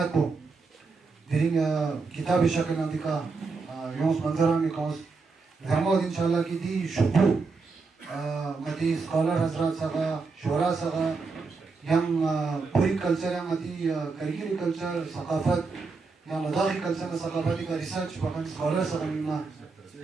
को Dering kitab ishaqil nanti ka yons manzaran ke kaus Zahmad inshallah ki di shukru mati scholar hazrat saga shura saga yang puri culture yang mati karigiri culture sakafat yang ladakhi culture ka sakafati ka research bahkan scholar saga nina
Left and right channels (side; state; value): left; quieter; 4.3 dB